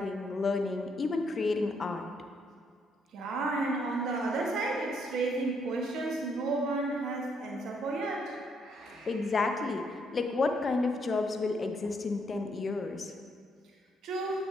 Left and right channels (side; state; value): both; normal; correlation 0.73